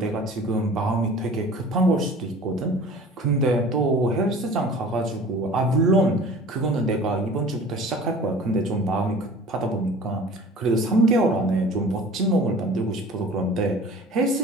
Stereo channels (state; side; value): normal; both; correlation 0.43